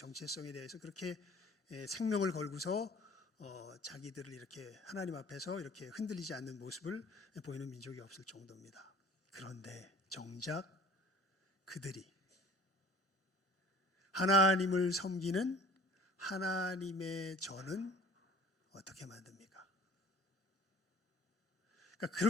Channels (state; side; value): normal; both; correlation 0.47